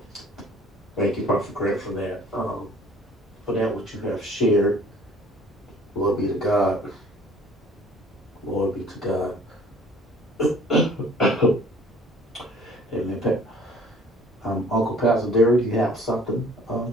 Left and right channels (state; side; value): normal; both; correlation 0.53